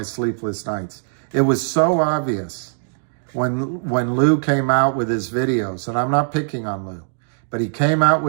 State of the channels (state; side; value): silent; left; 65 dB below the other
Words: sleepless nights. It was so obvious when Lou came out with his videos, and I'm not picking on Lou, but he came out